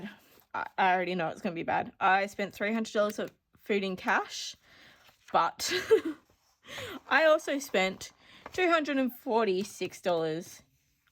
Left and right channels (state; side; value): identical; both; correlation 1.00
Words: I already know it's going to be bad. I spent $300 of food in cash, but I also spent $246